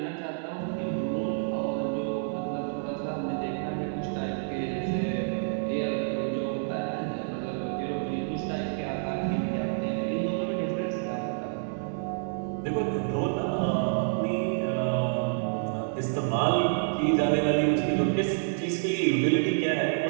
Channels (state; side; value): silent; left; digital silence